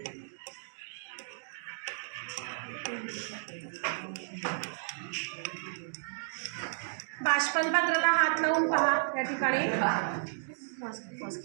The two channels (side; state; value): left; silent; digital silence